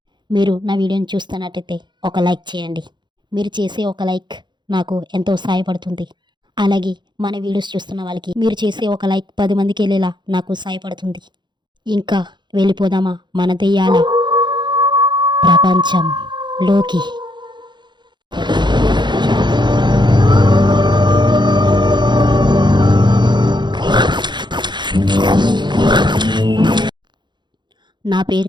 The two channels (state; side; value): late; left; 0.22 ms